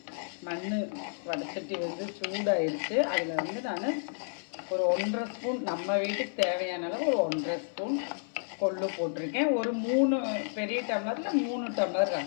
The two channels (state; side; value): silent; right; 57 dB below the other